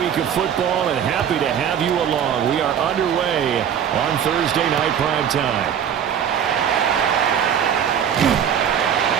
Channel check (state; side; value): quieter; left; 8.7 dB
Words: of football, and happy to have you along. We are underway on Thursday night prime time.